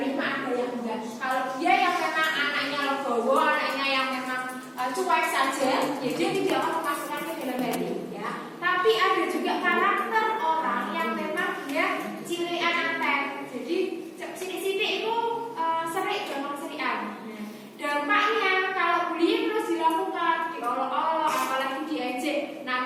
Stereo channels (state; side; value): identical; both; correlation 1.00